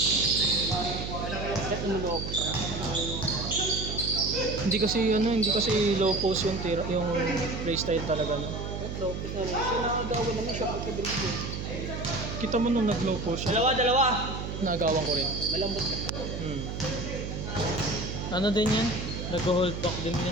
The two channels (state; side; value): noise; right; hum, 5 dB below the sound